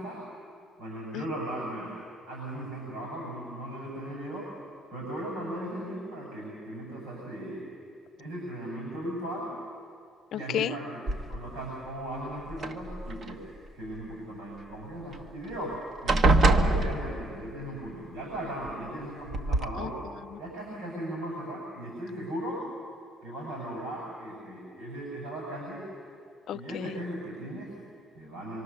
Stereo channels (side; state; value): both; normal; correlation 0.63